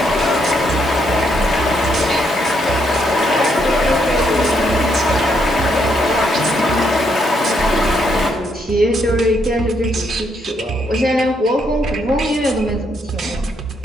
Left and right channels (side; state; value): both; normal; correlation 0.75